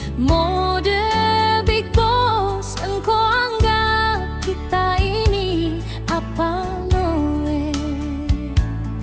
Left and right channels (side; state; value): both; identical; correlation 1.00